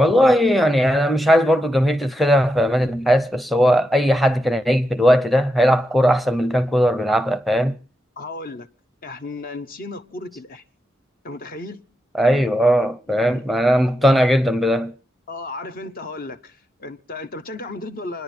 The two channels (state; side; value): normal; both; correlation 0.86